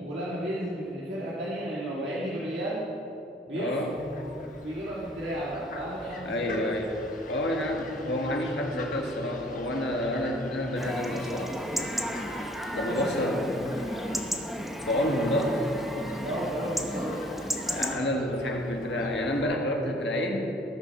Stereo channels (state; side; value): normal; both; correlation 0.56